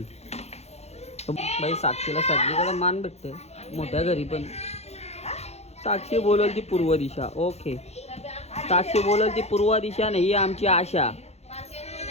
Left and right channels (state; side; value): late; right; 0.31 ms